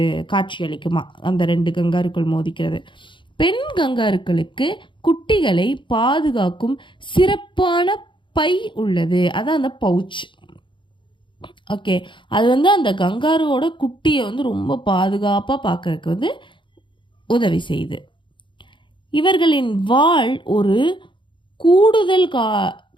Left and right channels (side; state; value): right; late; 0.23 ms